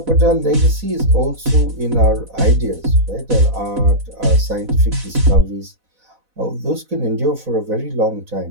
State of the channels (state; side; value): late; left; 4.1 ms